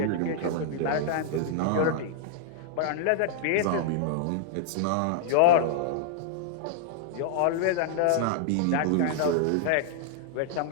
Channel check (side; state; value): both; different; correlation -0.01